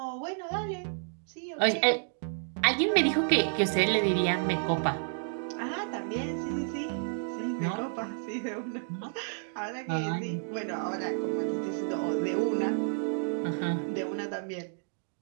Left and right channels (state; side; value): silent; left; digital silence